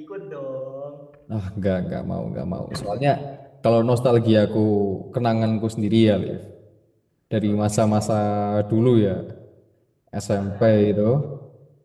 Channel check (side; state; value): both; identical; correlation 1.00